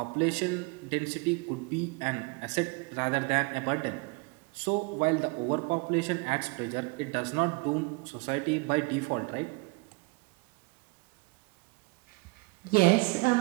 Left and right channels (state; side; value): quieter; left; 28.4 dB